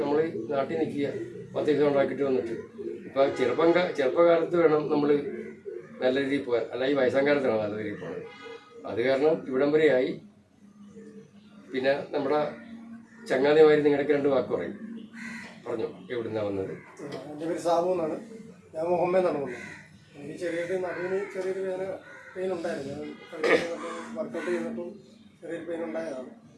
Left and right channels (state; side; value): identical; both; correlation 1.00